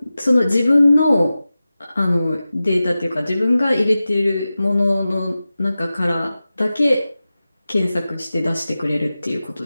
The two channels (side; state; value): both; inverted; correlation -0.95